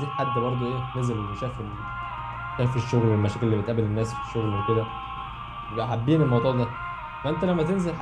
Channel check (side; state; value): both; identical; correlation 1.00